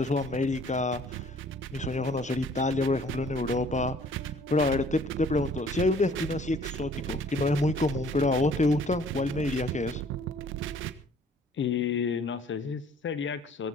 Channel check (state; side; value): normal; both; correlation 0.56